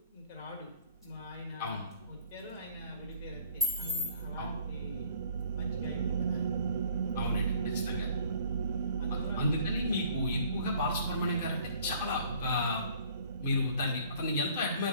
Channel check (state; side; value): inverted; both; correlation -0.56